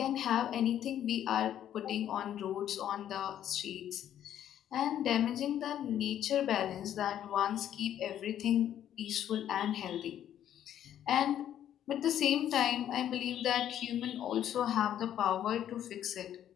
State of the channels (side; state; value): right; quieter; 10.8 dB